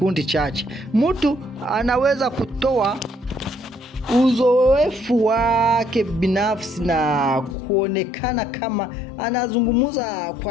chache. Mtu anaweza kutoa uzoefu wake binafsi na kuonekana kama anazungumza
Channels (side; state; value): right; drops out; at 7.6 s